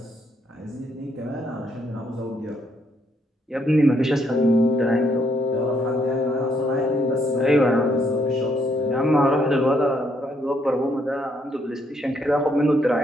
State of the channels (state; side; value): normal; both; correlation 0.73